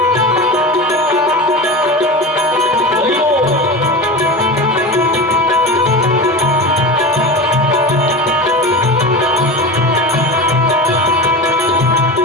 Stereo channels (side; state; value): both; normal; correlation 0.27